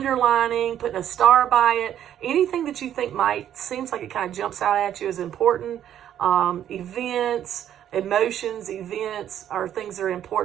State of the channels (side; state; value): left; quieter; 10.6 dB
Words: putting a star by it, anything that you think seems like it kind of jumps out at you as important. Events, emotions, events are things that are